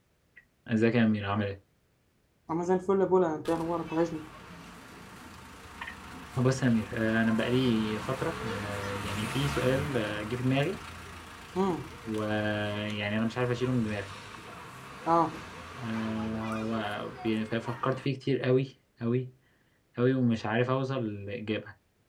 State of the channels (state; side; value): identical; both; correlation 1.00